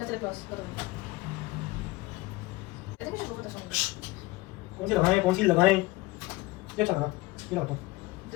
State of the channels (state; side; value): quieter; right; 20.7 dB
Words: lip gloss करो। I think we should go for this one. कौन सी लगाएं ये चल रहा ये लगाता हूं।